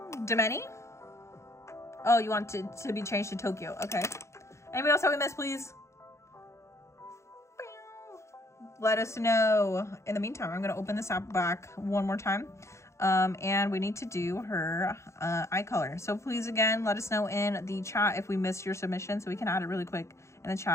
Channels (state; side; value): late; right; 0.14 ms